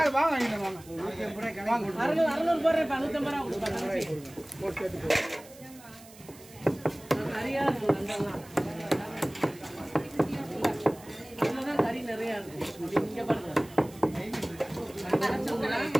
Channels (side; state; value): right; noise; hiss, 21 dB below the sound